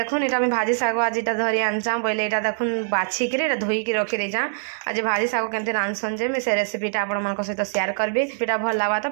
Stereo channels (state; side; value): silent; left; digital silence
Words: एटा मैं भाजी साग आज इटा धरी आनचा बोले एटा देखुन बाछिक धोईकी रखी देचा। आज भाजी साग केमती रांधसन जे मैं से रेसिपीटा आपण सहित शेयर करबी। रेसिपीटा भल लगा तो